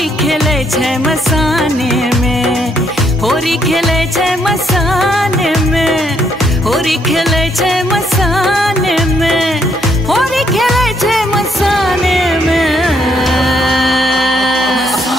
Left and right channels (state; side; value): normal; both; correlation 0.72